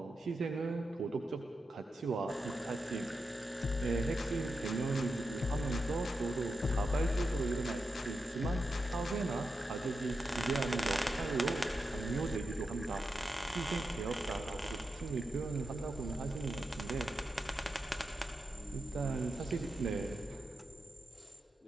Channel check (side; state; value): both; normal; correlation 0.88